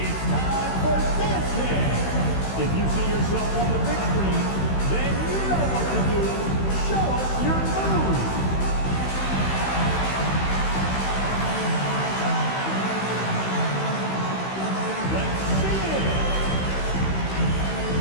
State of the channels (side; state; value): right; late; 16 ms